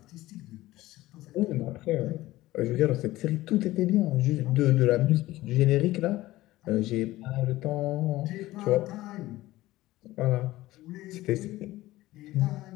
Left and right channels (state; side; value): quieter; right; 17.1 dB